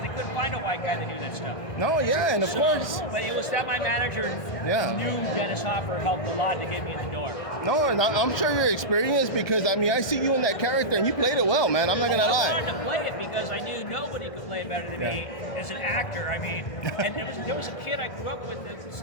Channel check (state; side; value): late; right; 1.6 ms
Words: They couldn't find a white guy that knew that stuff. No, yeah, and of course. But it was that my manager knew Dennis Hopper helped a lot to get me in the door. No, and I'm sure you're experienced because, I mean, I see you in that character and you played it well, man. I'm not going to lie. I wanted to play it because I knew nobody could play better than me as an actor. I mean, and there was a kid I grew up with that's